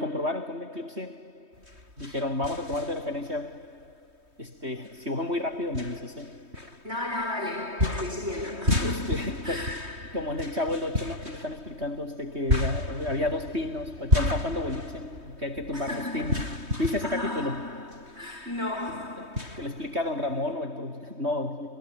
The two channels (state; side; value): late; left; 3.2 ms